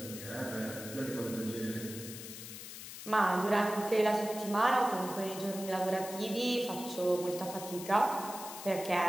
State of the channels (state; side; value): noise; left; hiss, 11 dB below the sound